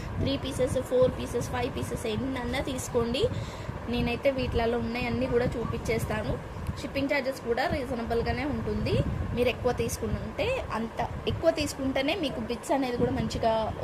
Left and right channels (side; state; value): both; identical; correlation 1.00